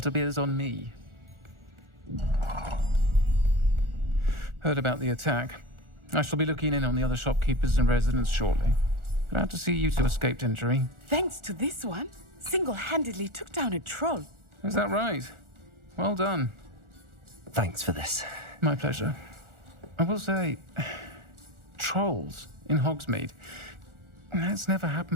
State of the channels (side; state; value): left; late; 1.4 ms